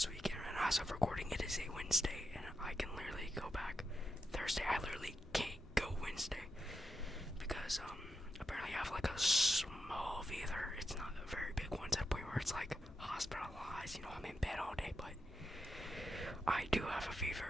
weekend, and as of recording, it is a Wednesday, and I can literally go back Thursday. I literally can't go Wednesday, because, apparently I have, like, a small fever. It's not a very big one to the point where it's, like, hospitalized, I'm in bed all day, but I do have a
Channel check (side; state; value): both; normal; correlation 0.86